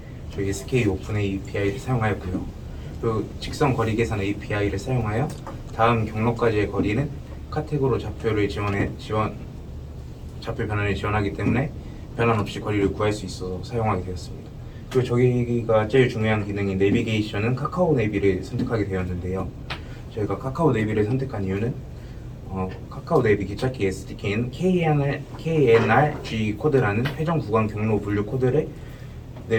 저희 SK 오픈 API를 사용하였고요. 그리고 직선 거리 계산 API를 사용하여 다음 경로까지의 거리는 카텍으로 좌표 변환을 지원하기 때문에 변환 없이 거리를 구할 수 있어서 사용하게 되었습니다. 그리고 저희가 제일 중요한 기능인 내비게이션은 카카오 내비를 선택하게 되었는데요. 저희가 카카오 내비를 선택한 이유는 카카오 내비 기착기 SDK는 KNRG 코드라는 회전 구간 경로 분류 코드를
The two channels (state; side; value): identical; both; correlation 1.00